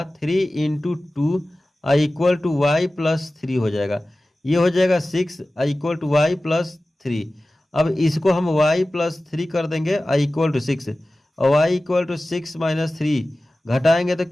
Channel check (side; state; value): both; normal; correlation 0.96